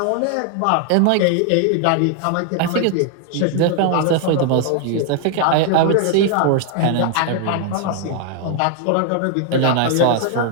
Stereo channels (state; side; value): different; both; correlation 0.00